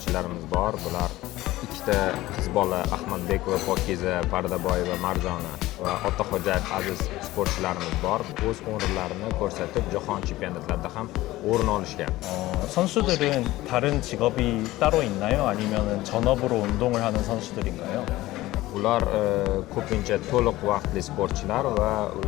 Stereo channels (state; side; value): quieter; right; 17.3 dB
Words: bor. Bular ikkita qiz bola Ahmadbekova Pokiza Pardaboyeva Marjona va Otaxo'jayev Aziz sportchilarimiz bor. O'z o'rinlarini ko'rsatib, jahon chempionatlarida ham o'rin olishgan. 선수들은 다른 직업이 따로 있나요? 아니면 전업으로 운동을 하는 선수들인가요? Ular ko'pincha to'liq vaqtli sportchilar va